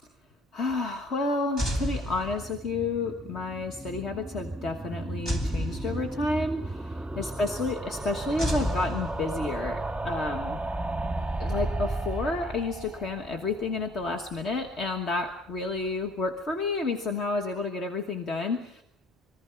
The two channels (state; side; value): normal; both; correlation 0.60